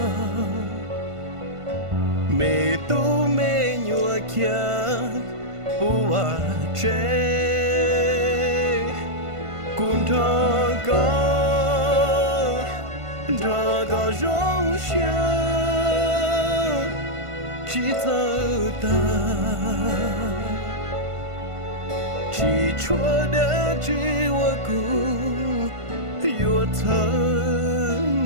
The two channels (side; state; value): left; late; 1.5 ms